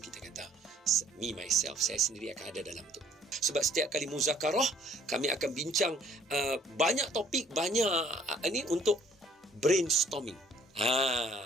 kata me myself, saya sendiri akan ada dalam tu. Sebab setiap kali muzakarah kami akan bincang banyak topik, banyak ni untuk brainstorming.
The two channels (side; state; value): both; normal; correlation 0.59